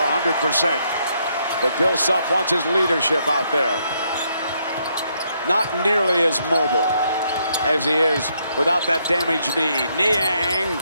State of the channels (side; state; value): both; inverted; correlation -0.74